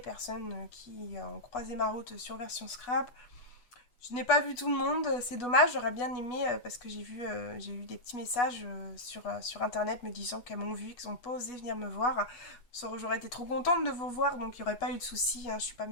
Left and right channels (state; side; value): late; right; 8.2 ms